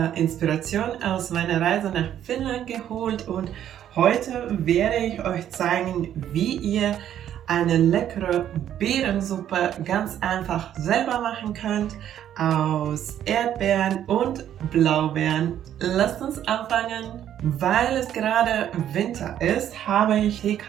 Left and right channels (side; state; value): left; quieter; 10.6 dB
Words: Inspiration aus meiner Reise nach Finnland geholt und heute werde ich euch zeigen, wie ihr eine leckere Beerensuppe ganz einfach selber machen könnt aus Erdbeeren und Blaubeeren. Lasst uns anfangen. Weil es gerade Winter ist, habe ich